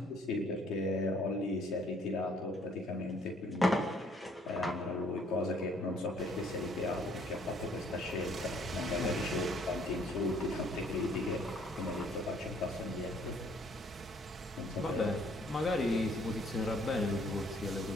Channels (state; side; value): normal; both; correlation 0.62